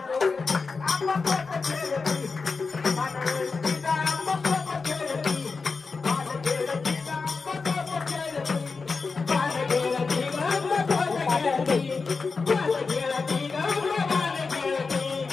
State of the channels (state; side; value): quieter; right; 4.5 dB